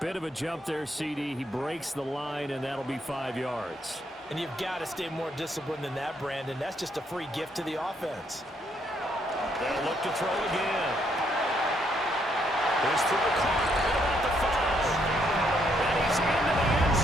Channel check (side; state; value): both; normal; correlation 0.73